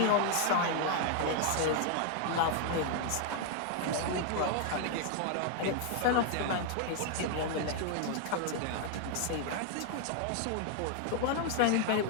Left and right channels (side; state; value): both; different; correlation 0.00